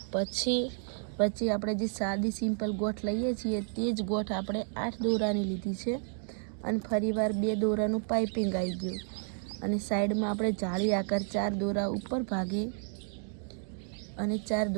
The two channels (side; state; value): left; silent; 57 dB below the other